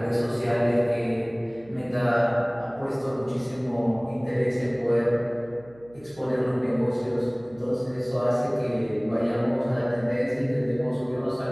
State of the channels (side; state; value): right; noise; hum, 25 dB below the sound